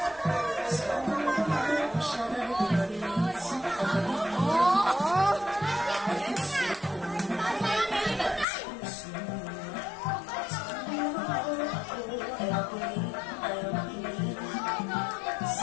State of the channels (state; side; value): drops out; right; at 8.5 s